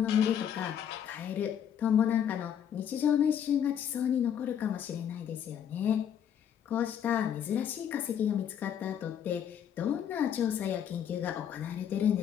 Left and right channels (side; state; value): right; quieter; 9.0 dB